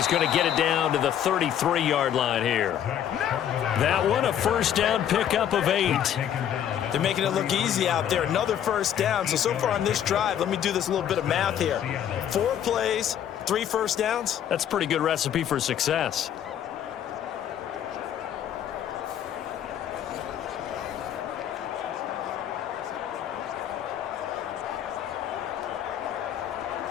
going to get it down to the 33-yard line here. That one, a first down pickup of 8. They're making it look easy out there. Another first down. So far on this drive, let me do this little bit of math here. 4 plays, 3 first downs. That's a pretty good recipe for success.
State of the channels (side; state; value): right; quieter; 10.0 dB